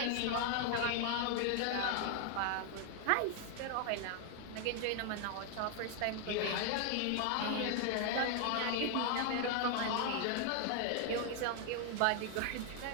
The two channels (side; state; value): both; different; correlation 0.00